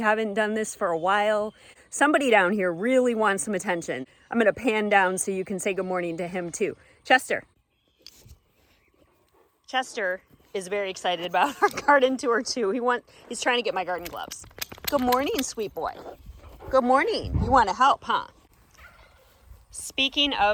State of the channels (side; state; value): both; identical; correlation 1.00